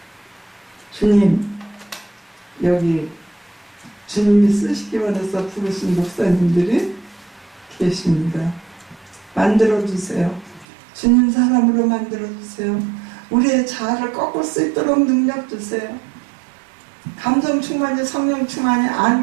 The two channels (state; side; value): drops out; left; at 10.7 s